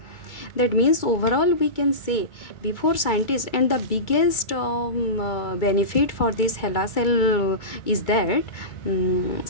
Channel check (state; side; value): late; right; 2.3 ms